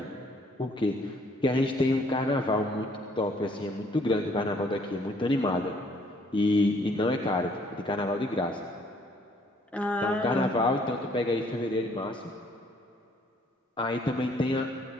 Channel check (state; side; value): normal; both; correlation 0.63